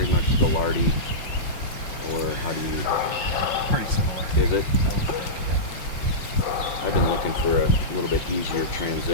much the lardy, or how do you? Pretty similar. Is it? I would think, yeah. I've been looking for a little bit easier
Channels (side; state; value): right; late; 5.7 ms